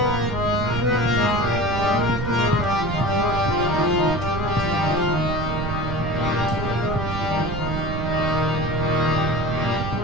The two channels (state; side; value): noise; right; rumble, 4 dB below the sound